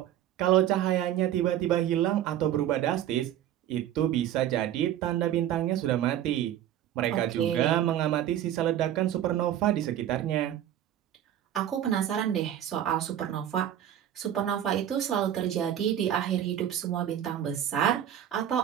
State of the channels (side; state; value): left; quieter; 11.2 dB